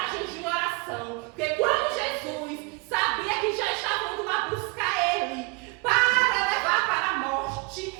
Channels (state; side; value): quieter; left; 29.1 dB